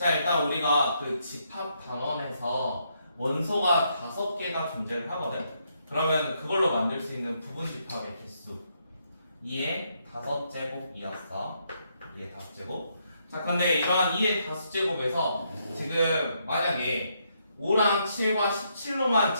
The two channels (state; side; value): inverted; both; correlation -0.76